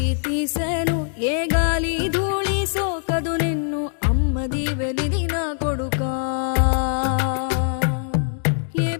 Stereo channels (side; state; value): right; silent; 59 dB below the other